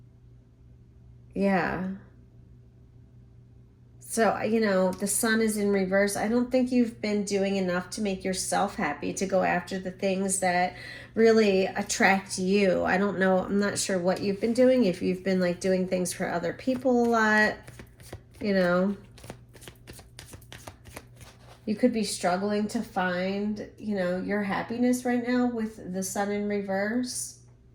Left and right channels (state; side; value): identical; both; correlation 1.00